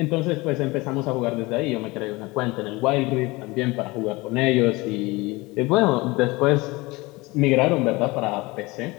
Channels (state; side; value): quieter; right; 22.8 dB